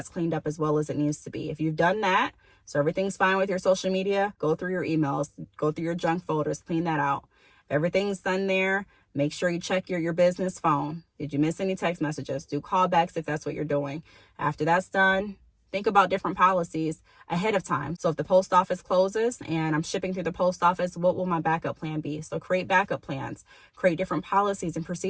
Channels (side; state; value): both; identical; correlation 1.00